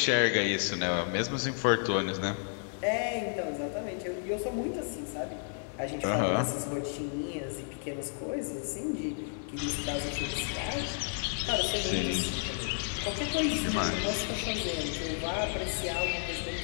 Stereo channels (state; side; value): silent; right; digital silence